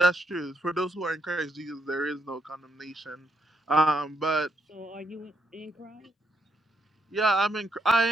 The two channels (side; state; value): both; normal; correlation 0.77